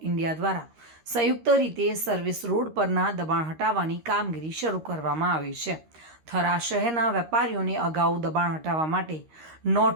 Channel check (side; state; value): left; late; 13 ms